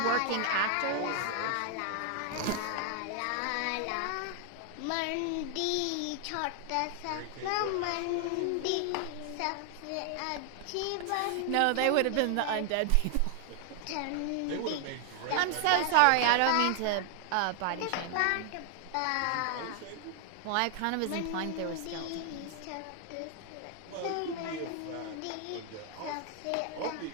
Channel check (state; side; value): different; both; correlation 0.00